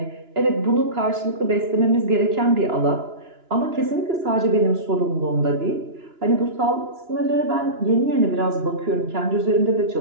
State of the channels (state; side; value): late; left; 2.9 ms